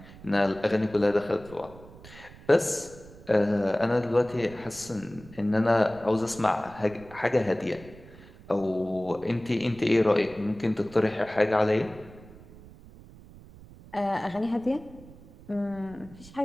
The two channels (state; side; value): noise; right; rumble, 20 dB below the sound